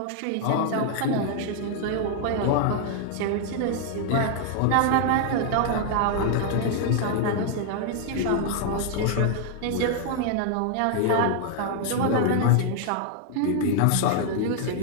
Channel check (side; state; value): both; different; correlation 0.00